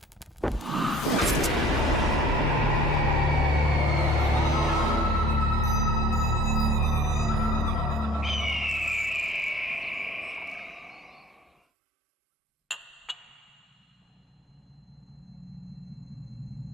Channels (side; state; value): both; normal; correlation 0.50